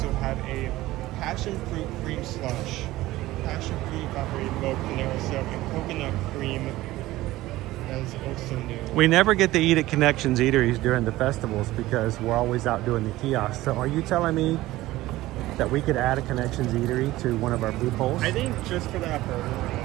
have a passion fruit cream slush, passion fruit evaporated milk, Panera syrup, and coconut cream. That is also new. We never get to eat at Connections Eateries during the festivals because we're always out doing the kiosks. So are you telling me that we could add a Connections Eatery to one of our food polls? I think just for that burger.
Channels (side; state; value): left; quieter; 17.1 dB